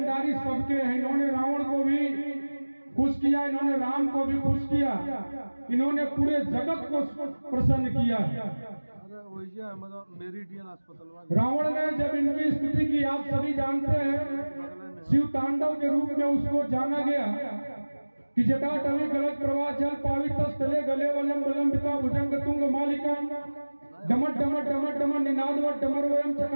सबके हैं। इन्होंने रावण को भी खुश किया, इन्होंने राम को भी खुश किया, इन्होंने पूरे जगत को प्रसन्न किया। रावण ने जब इनकी स्तुति की, आप सभी जानते हैं, शिव तांडव के रूप में उसको जाना गया कि जटाटवी गलत प्रवाह जल पावित स्थले गले वलम वलंबिता भुजंग तुंग मालिका डमट डमट डमट डमट निनादवट डमरवयम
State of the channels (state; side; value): inverted; both; correlation -1.00